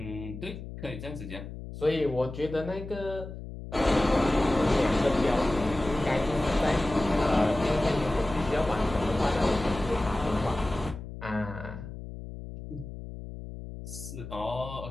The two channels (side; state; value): left; noise; hum, 11 dB below the sound